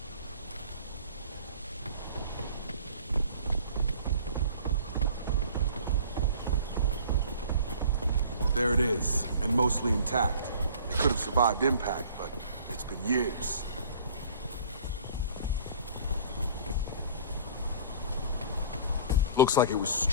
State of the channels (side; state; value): both; inverted; correlation -0.47